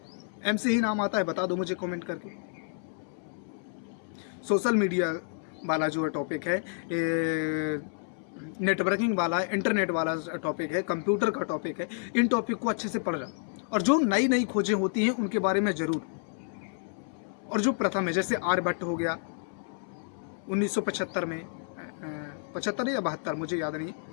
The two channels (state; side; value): silent; right; 58 dB below the other